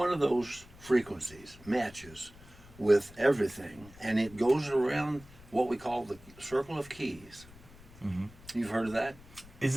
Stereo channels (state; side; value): noise; left; rumble, 21 dB below the sound